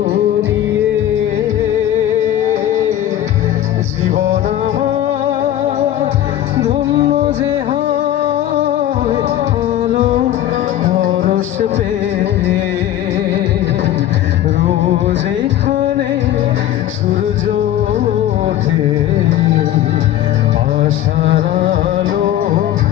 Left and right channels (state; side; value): quieter; right; 12.3 dB